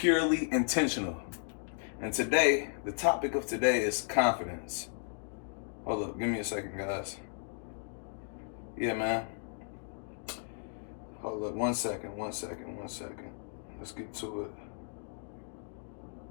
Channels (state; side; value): silent; right; 55 dB below the other